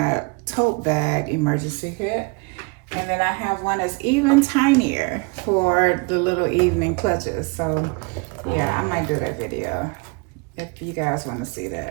tote bag emergency kit. And then I have one that's even tinier for the little evening clutches. So yeah, I might do that video if you guys want to see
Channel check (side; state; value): left; quieter; 30.1 dB